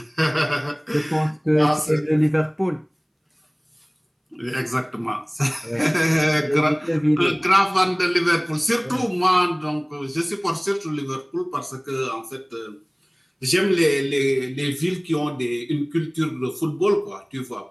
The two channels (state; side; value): identical; both; correlation 1.00